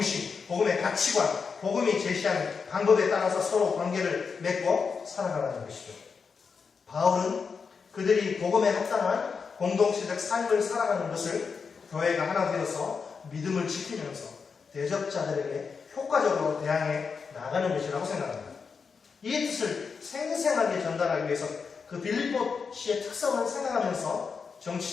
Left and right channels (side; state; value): right; quieter; 5.5 dB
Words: 복음의 가치관, 복음이 제시한 방법에 따라서 서로 관계를 맺고 살아가라는 것이죠. 바울은 그들이 복음에 합당한 공동체적 삶을 살아가는 것을 교회가 하나 되어서 믿음을 지키면서 대적자들에게 효과적으로 대항해 나가는 것이라고 생각합니다. 이 뜻을 생생하게 전달하기 위해서 그 빌립보시의 특성을 생각하면서